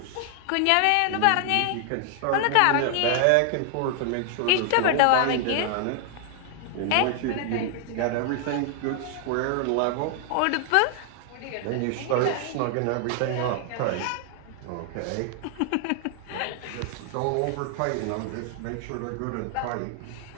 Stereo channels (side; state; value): both; different; correlation 0.00